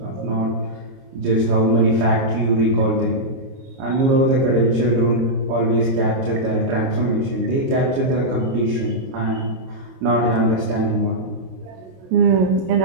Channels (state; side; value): late; left; 22 ms